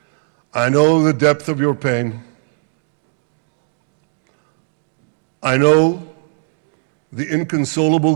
I know the depth of your pain. I know the inconsolable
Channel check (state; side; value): silent; left; digital silence